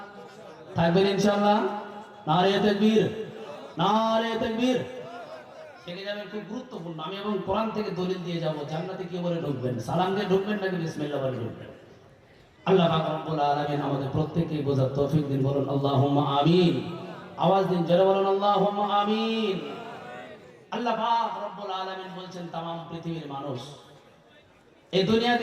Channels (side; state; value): both; identical; correlation 1.00